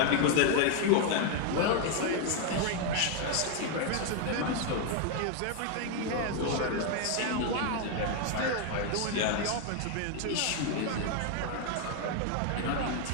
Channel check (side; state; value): both; different; correlation 0.01